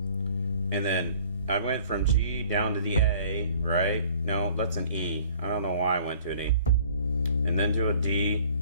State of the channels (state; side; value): inverted; both; correlation -0.53